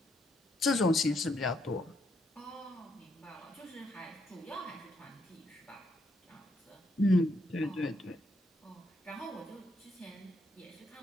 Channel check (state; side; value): normal; both; correlation 0.76